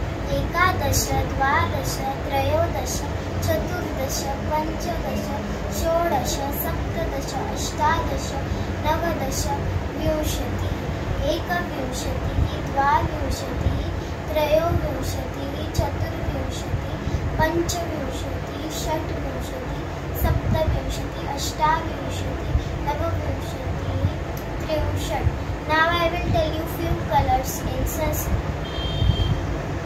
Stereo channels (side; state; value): both; identical; correlation 1.00